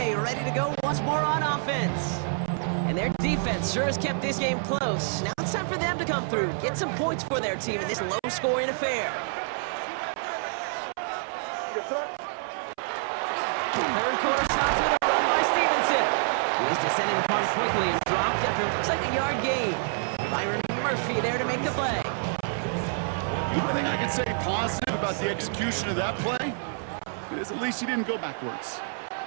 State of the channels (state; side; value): silent; left; 60 dB below the other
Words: ready to go once more on offense. And their defense sure has kept this game close. Now it's time for them to come through, get some points for their team in this low-scoring affair. 3rd quarter starts with a run by Stevenson. He's descended upon quickly and dropped after it looks like a yard gain. Byron Murphy there to make the play. The only thing I can say positive about the execution of that play, is at least he didn't go backwards.